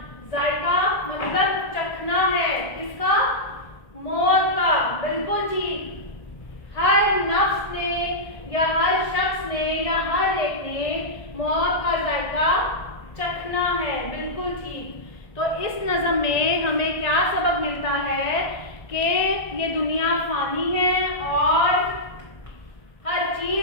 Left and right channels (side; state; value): right; late; 1.5 ms